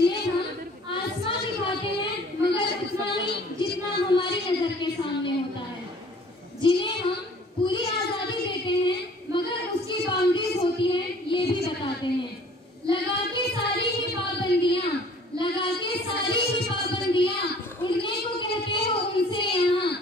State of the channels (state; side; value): normal; both; correlation 0.52